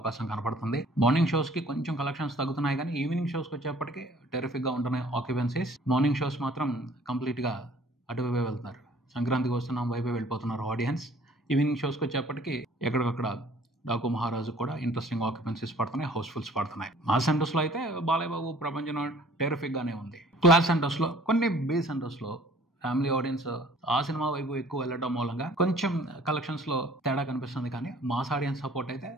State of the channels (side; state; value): both; normal; correlation 0.54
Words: కనపడుతుంది. మార్నింగ్ షోస్ కి కొంచెం కలెక్షన్స్ తగ్గుతున్నాయి కానీ ఈవినింగ్ షోస్ కి వచ్చేప్పటికీ టెరిఫిక్ గా ఉంటున్నాయి ఆక్యుపెన్సీస్. మార్నింగ్ షోస్ మాత్రం కంప్లీట్ గా అటువైపే వెళ్తున్నారు. సంక్రాంతికి వస్తున్నాం వైపే వెళ్ళిపోతున్నారు ఆడియన్స్. ఈవినింగ్ షోస్కి వచ్చేప్పటికి ఎక్కడికక్కడ డాకు మహారాజు కూడా ఇంట్రెస్టింగ్ ఆక్యుపెన్సీస్ పడుతున్నాయి, హౌస్ఫుల్స్ పడుతున్నాయి. మా సెంటర్స్ లో అయితే బాలయ్య బాబు ప్రపంచం టెరిఫిక్ గానే ఉంది. క్లాస్ సెంటర్స్ లో, కొన్ని బి సెంటర్స్ లో ఫ్యామిలీ ఆడియన్స్ ఆ సినిమా వైపు ఎక్కువ వెళ్ళడం మూలంగా కొంచెం కలెక్షన్స్ లో తేడా కనిపిస్తుంది. కానీ మాస్ ఆడియన్స్ సపోర్ట్ అయితే